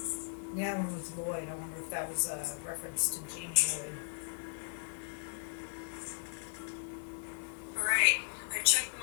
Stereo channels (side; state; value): right; silent; digital silence